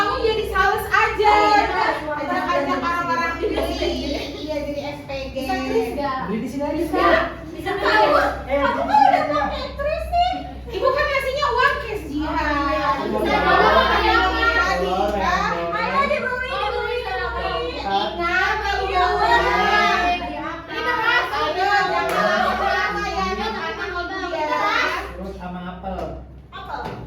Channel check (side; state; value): both; identical; correlation 1.00